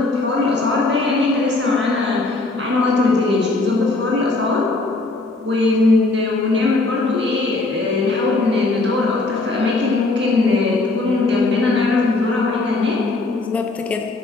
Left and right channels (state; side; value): quieter; right; 3.2 dB